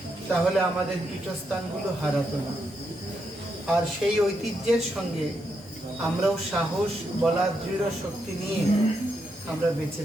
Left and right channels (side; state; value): both; normal; correlation 0.81